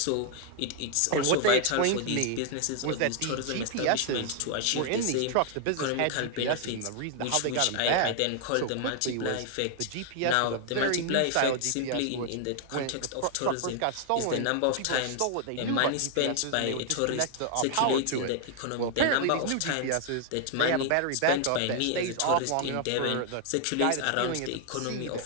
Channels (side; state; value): both; different; correlation 0.00